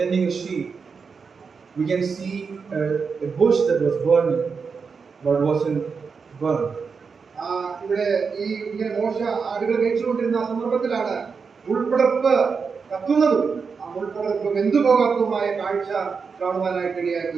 a sheep. We can see a bush that was burning, but wasn't burned. ഇവിടെ ഈ ഇങ്ങനെ മോശ ആടുകൾ മേയിച്ചുകൊണ്ടിരുന്ന സന്ദർഭത്തിലാണ് മുൾപ്പടർപ്പ് കത്തുന്നതും ആ മുൾപ്പടർപ്പ് വെന്തുപോകാത്തതുമായ കാഴ്ച കാണുവാനായിട്ട്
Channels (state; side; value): quieter; left; 5.4 dB